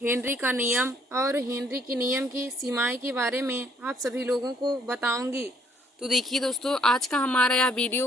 का नियम और हेनरी के नियम की सीमाएँ के बारे में आप सभी लोगों को बताऊंगी। तो देखिए दोस्तों, आज का हमारा यह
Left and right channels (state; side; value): normal; both; correlation 0.64